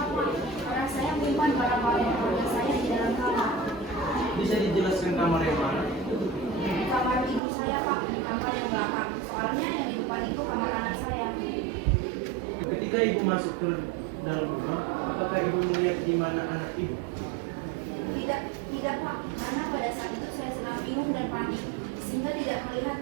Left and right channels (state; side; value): drops out; left; at 7.4 s